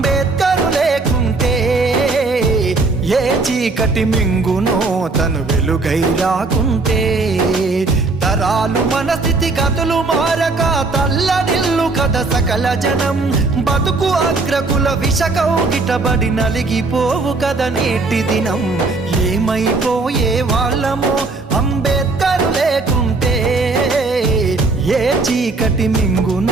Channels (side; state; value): left; quieter; 3.6 dB